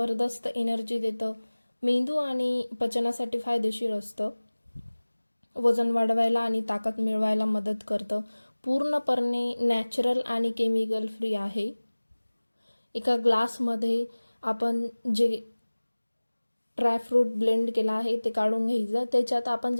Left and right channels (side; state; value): both; inverted; correlation -1.00